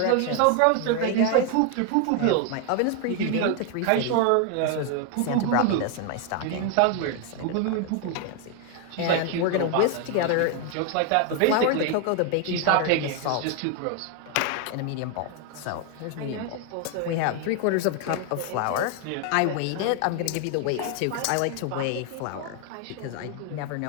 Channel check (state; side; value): different; both; correlation 0.01